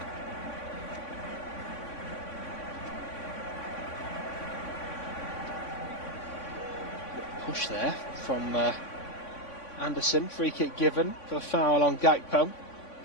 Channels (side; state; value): right; late; 3.5 ms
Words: Push there from Anderson. Free kick given for the foul on Gakpo.